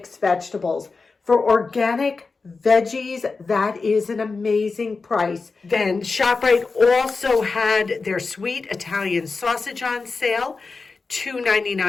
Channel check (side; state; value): right; quieter; 4.2 dB